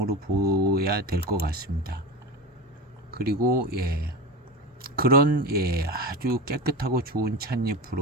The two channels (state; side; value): normal; both; correlation 0.26